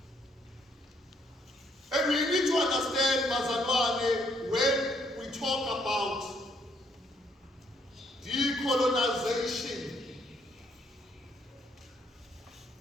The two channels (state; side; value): normal; both; correlation 0.70